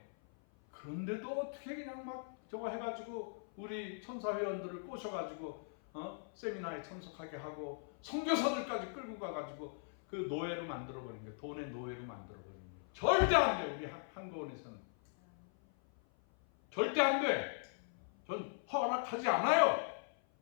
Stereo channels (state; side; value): silent; right; 52 dB below the other